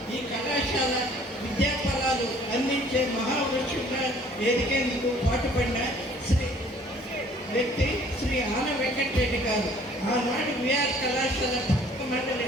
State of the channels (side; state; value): both; normal; correlation 0.56